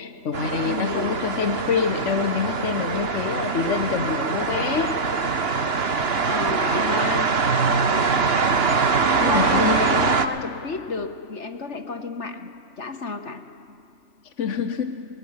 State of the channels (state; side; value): late; right; 2.9 ms